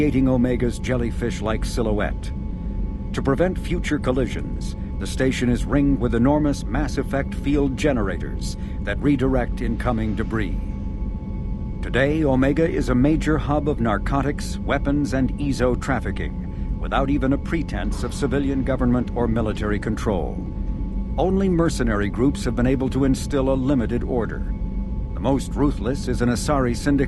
Omega's jellyfish-like silhouette. To prevent future collisions, the station is ringed with enormous mass-effect field generators that redirect incoming debris. Today, Omega is a major hub of narcotics, weapons, and EZO trafficking, without even a pretense of civilian government or military control. Only mercenary groups have been able to instill a limited order. The most ruthless is an Asari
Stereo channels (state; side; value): identical; both; correlation 1.00